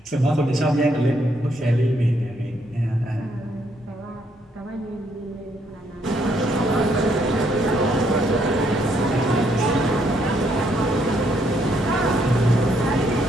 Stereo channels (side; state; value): both; normal; correlation 0.72